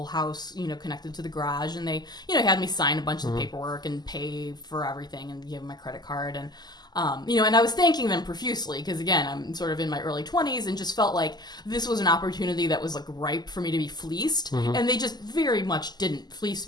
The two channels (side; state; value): right; late; 0.20 ms